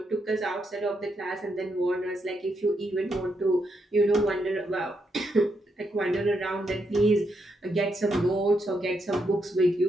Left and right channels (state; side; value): normal; both; correlation 0.80